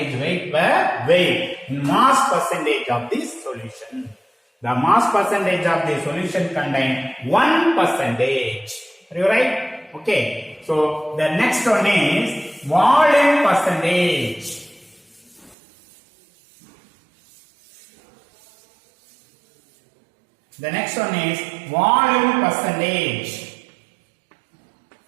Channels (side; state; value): left; drops out; at 15.6 s